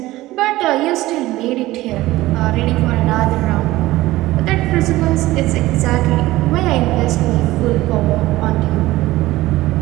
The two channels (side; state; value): left; quieter; 17.5 dB